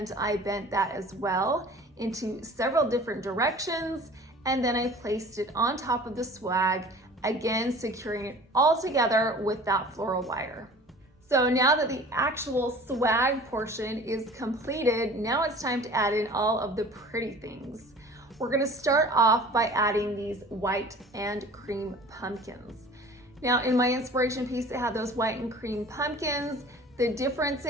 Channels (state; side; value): normal; both; correlation 0.44